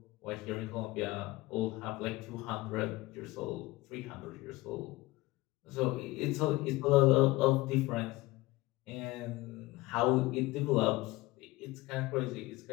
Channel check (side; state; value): right; quieter; 20.1 dB